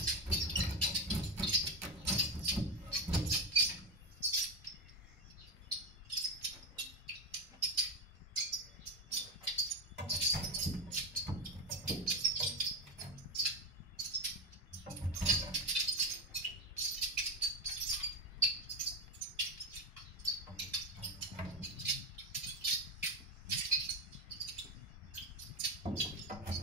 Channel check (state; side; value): normal; both; correlation 0.14